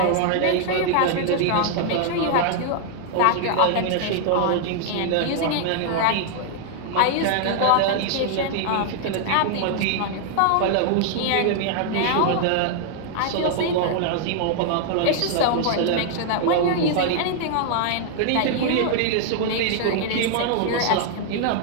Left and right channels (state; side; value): different; both; correlation 0.00